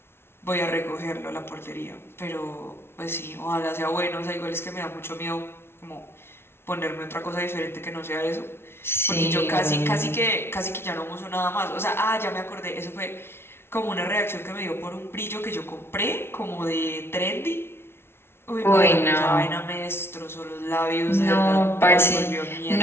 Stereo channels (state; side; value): late; right; 0.12 ms